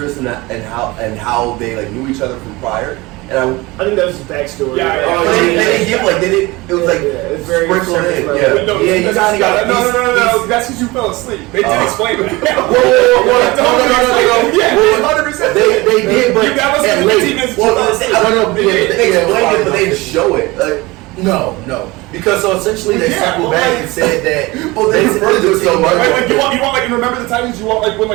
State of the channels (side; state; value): left; quieter; 22.2 dB